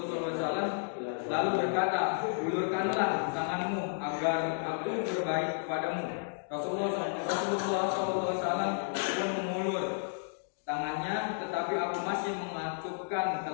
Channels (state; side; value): silent; right; digital silence